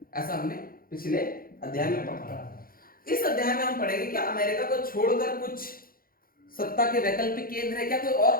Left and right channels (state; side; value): late; right; 0.42 ms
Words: ऐसा हमने पिछले अध्याय में पढ़ा। इस अध्याय में हम पढ़ेंगे कि अमेरिका को छोड़कर कुछ सत्ता के वैकल्पिक केंद्र है क्या, कोई और